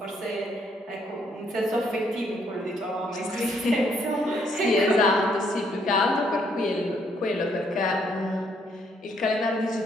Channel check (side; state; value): both; normal; correlation 0.70